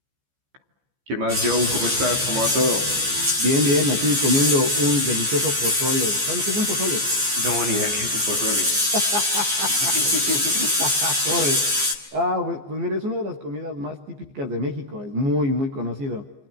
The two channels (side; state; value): left; late; 14 ms